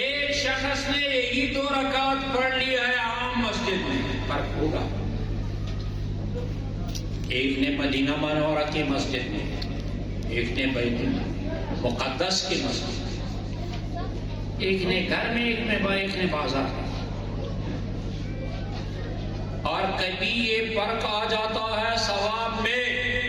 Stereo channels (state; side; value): identical; both; correlation 1.00